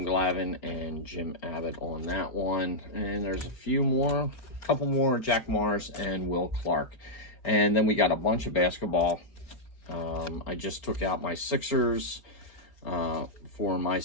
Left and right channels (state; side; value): late; right; 4.4 ms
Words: Glavine, and Jim Abbott on that one. And there's a few more, a couple more, Jack Morris and Will Clark. And then we got a bunch of basketball. I just took out my Sixers for my